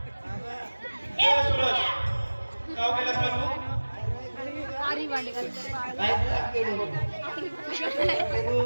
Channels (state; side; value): inverted; both; correlation -1.00